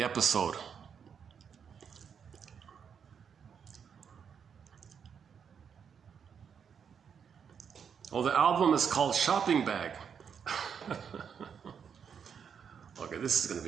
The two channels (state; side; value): quieter; left; 7.2 dB